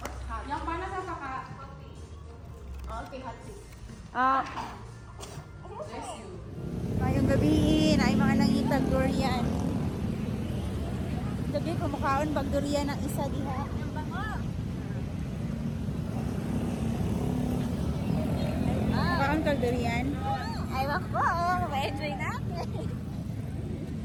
Hot. Yang panas apa kak? Okay, hot tea. Bless you. Ngayong gabiin ay mga nangitag durian. Gabi kumakaon bag durian ng isa diha. Yang bango. Kumakaon kag durian. Ay, wako. Ma-enjoy natin.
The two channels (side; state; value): both; identical; correlation 1.00